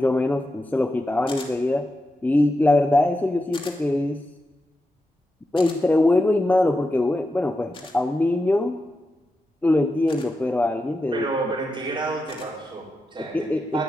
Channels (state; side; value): normal; both; correlation 0.89